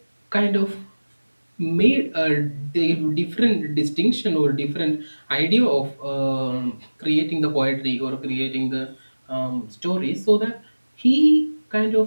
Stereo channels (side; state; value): both; inverted; correlation -1.00